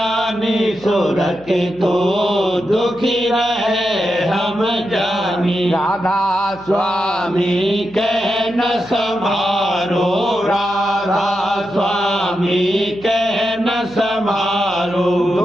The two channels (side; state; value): right; noise; hum, 24 dB below the sound